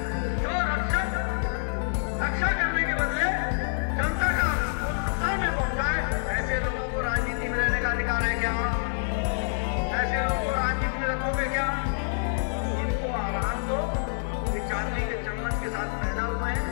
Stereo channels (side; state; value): right; silent; 60 dB below the other